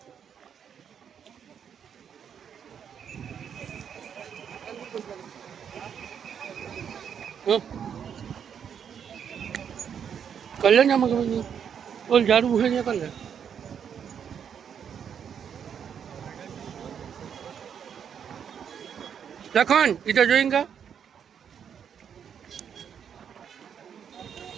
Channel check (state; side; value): quieter; left; 8.0 dB